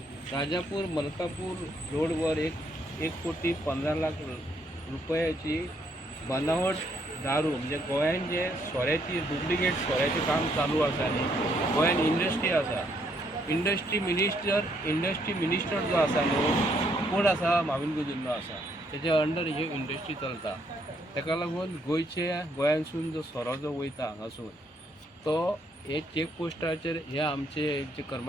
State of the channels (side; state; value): both; normal; correlation 0.71